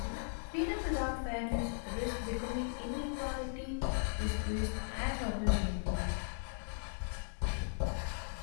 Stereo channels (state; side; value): silent; right; digital silence